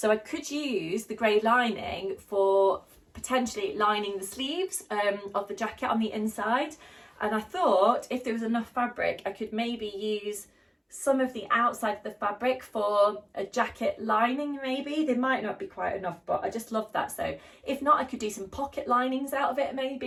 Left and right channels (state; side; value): identical; both; correlation 1.00